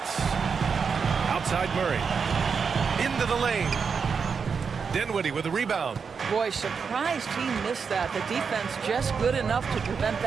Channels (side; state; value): left; quieter; 5.8 dB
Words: Outside Murray. Into the lane. Dinwiddie with a rebound. Boy, surprised he missed that. The defense just good enough to prevent